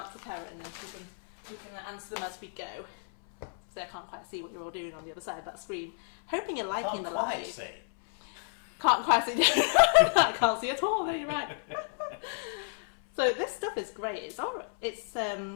to Karen and we can answer them as we go. So I can't quite see what you're all doing on the other side of that screen. Hoping you're liking the live. See. Can't quite see. I can't see at all. No, you're right. So this stuff is great. It's all. It's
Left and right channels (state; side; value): silent; right; 57 dB below the other